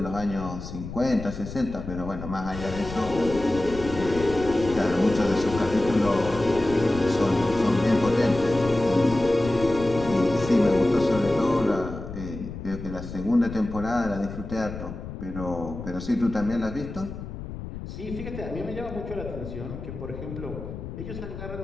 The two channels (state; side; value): noise; left; rumble, 10 dB below the sound